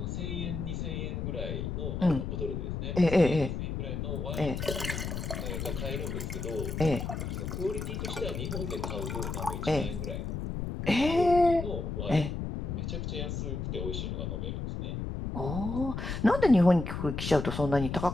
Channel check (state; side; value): noise; left; rumble, 4 dB below the sound